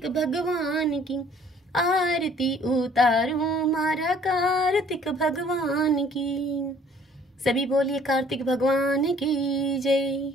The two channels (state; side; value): normal; both; correlation 0.56